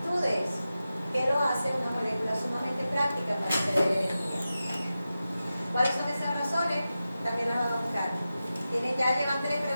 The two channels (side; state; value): both; inverted; correlation -0.93